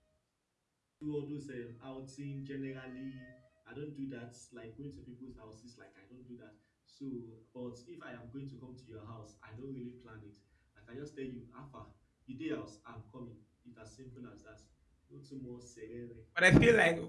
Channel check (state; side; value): identical; both; correlation 1.00